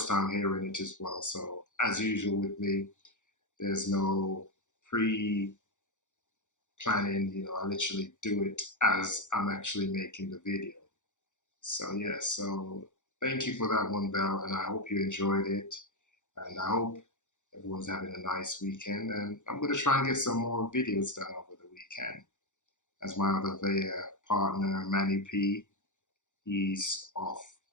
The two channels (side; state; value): right; late; 0.85 ms